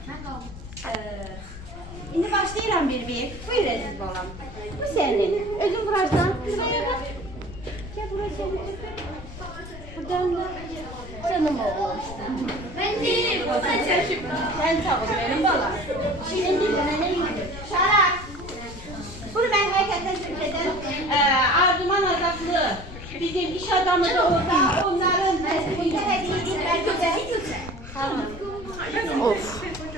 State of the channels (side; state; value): left; noise; rumble, 13 dB below the sound